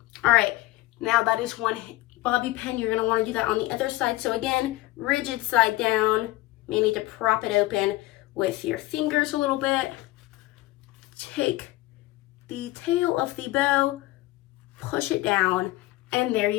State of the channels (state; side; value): quieter; right; 18.5 dB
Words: All right, now that is one bobby pin. You're going to want to do that on the other side. So again, rigid side down. You may need to prop it open with your fingers a little bit. Take the tail of the bow, push it down, and there